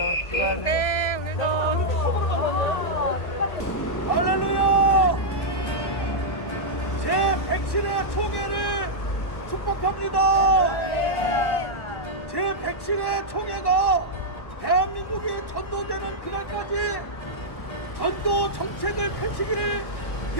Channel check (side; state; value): right; late; 1.1 ms